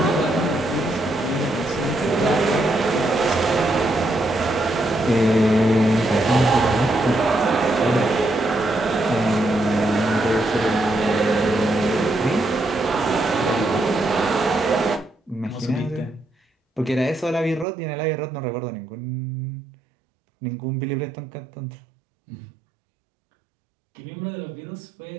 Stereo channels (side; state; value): left; drops out; at 17.7 s